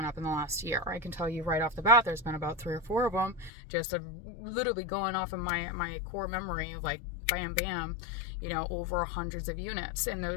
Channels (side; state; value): right; drops out; at 3.5 s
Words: up in the last year? I can tell you right off the bat, there's been about 3 or 4 of them, just literally going off of my core memory of like bam, bam, you know, over hundreds of units in